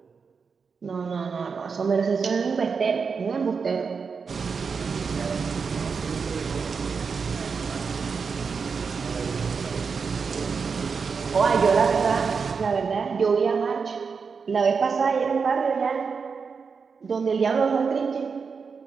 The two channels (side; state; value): left; quieter; 5.5 dB